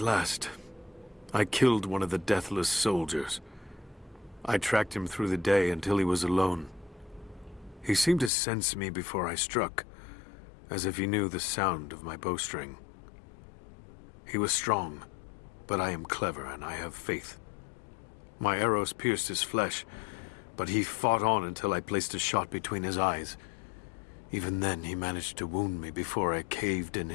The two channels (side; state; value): right; drops out; at 8.3 s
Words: last, I killed one of the deathless soldiers. I tracked him through the day until he was alone. He seemed to sense me before I struck, as if he knew the sound of my bowstring. He was strong, but I am clever and I have faith. My arrows pierced his flesh, but he fought on until I placed a shot between his eyes. Even then, he managed to wound me before I caved in